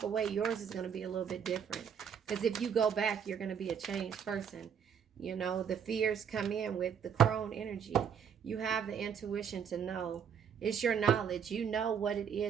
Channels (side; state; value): left; quieter; 7.6 dB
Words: away, yours is going to be a little bit different. Because if you go back, you're going to be a changed person. The fears come in with the crone energy. You have the intuition to know. It's your knowledge. You know what it